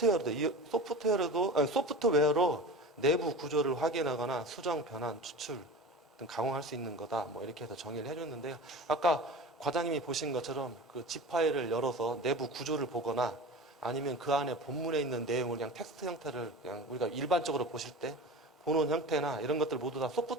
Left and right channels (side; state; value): both; normal; correlation 0.32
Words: 소프트웨어로 내부 구조를 확인하거나 수정, 변환, 추출 등 강화할 수 있는 거다. 이렇게 해서 정의를 해줬는데요. 아까 과장님이 보신 것처럼 그 zip 파일을 열어서 내부 구조를 보거나 아니면 그 안에 본문에 있는 내용을 그냥 텍스트 형태를 그냥 우리가 일반적으로 보실 때 보는 형태나 이런 것들 모두 다